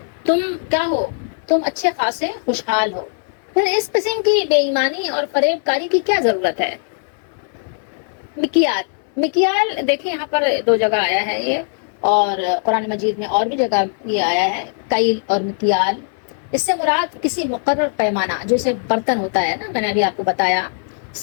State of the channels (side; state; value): right; silent; 63 dB below the other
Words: تم کیا ہو؟ تم اچھے خاصے خوشحال ہو، پھر اس قسم کی بے ایمانی اور فریب کاری کی کیا ضرورت ہے؟ مکیال دیکھیں یہاں پر دو جگہ آیا ہے یہ، اور قرآن مجید میں اور بھی جگہ یہ آیا ہے، کیل اور مکیال۔ اس سے مراد کسی مقرر پیمانہ، جیسے برتن ہوتا ہے نا، میں نے ابھی آپ کو بتایا